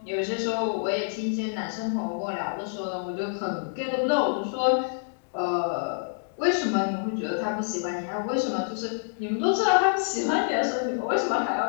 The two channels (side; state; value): right; silent; digital silence